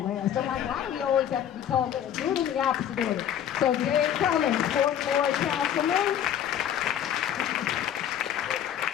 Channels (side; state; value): right; quieter; 9.9 dB